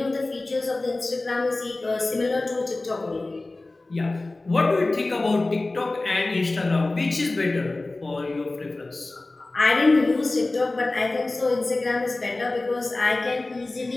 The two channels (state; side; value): quieter; right; 3.1 dB